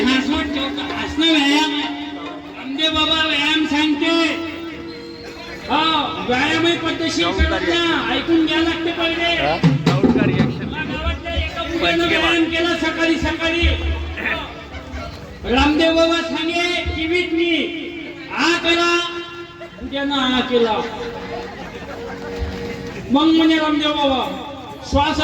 ठेवतो. हसणं व्यायाम आहे. रामदेव बाबा व्यायाम सांगते. हा व्यायामही पद्धतशीर करत ना. ऐकून घ्या लागते पहिले. गावातल्या एका मुलानं व्यायाम केला सकाळी सकाळी. रामदेव बाबा सांगे टीव्हीत मी हा करा. उद्यानं हा केला. मग म्हणे रामदेव बाबा श्वास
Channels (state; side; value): identical; both; correlation 1.00